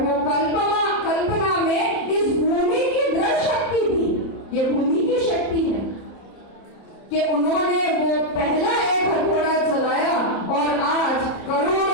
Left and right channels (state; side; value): late; right; 30 ms